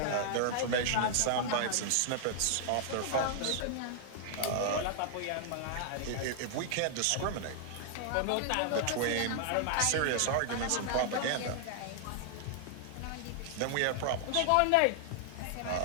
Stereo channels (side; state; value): both; different; correlation 0.00